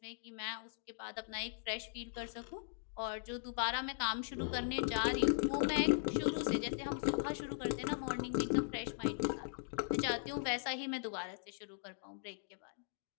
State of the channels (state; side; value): silent; right; digital silence